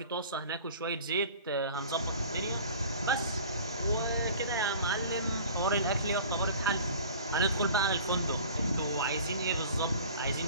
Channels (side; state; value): both; inverted; correlation -0.43